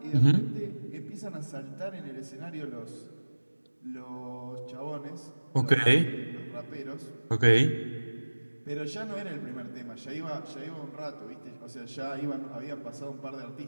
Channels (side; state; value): both; inverted; correlation -1.00